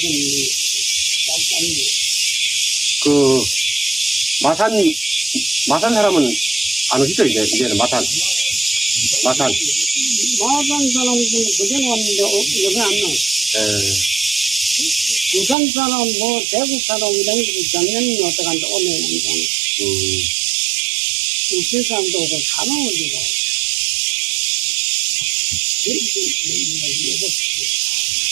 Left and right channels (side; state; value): left; drops out; at 15.6 s